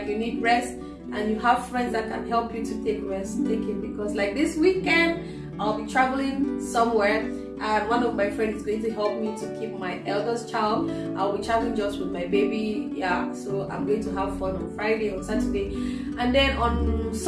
you need rest and you have friends that can help you to take rest, take it. Because like this weekend, I'll be traveling somewhere. And one of my friends is going to help me to keep my eldest child. I'll be traveling just with my baby. Yeah, so I'm going to have fun on Friday, on Saturday, and then on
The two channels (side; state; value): both; identical; correlation 1.00